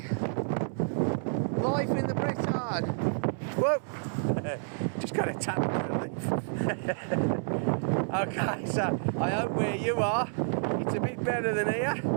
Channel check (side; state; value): left; silent; 58 dB below the other